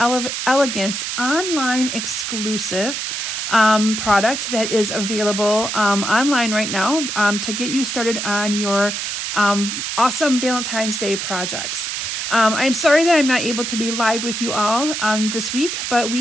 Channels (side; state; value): right; noise; hiss, 3 dB below the sound